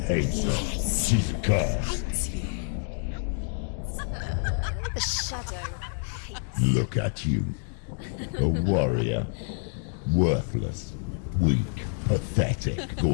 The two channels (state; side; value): silent; right; 60 dB below the other